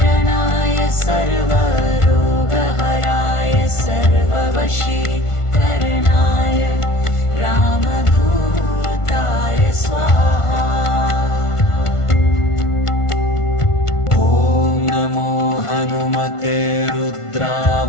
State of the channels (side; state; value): right; late; 1.5 ms